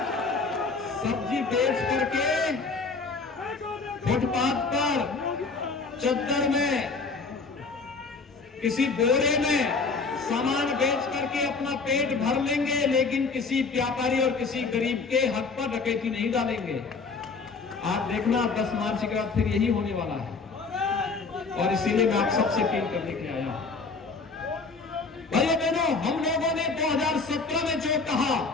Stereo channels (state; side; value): quieter; right; 4.4 dB